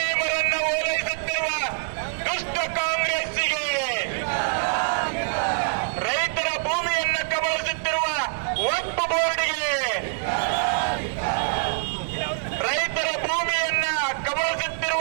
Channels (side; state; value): left; silent; digital silence